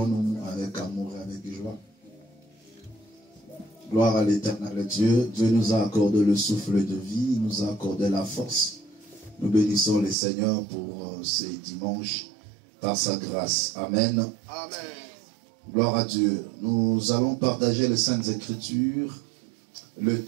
avec amour et avec joie. Gloire à l'éternel Dieu. Dieu nous a accordé le souffle de vie, il nous a accordé la force. Nous bénissons le Seigneur pour ces dimanches par sa grâce. Amen. Amen. Gloire à Dieu. Nous allons partager les Saintes Écritures. Le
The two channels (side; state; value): left; drops out; at 10.2 s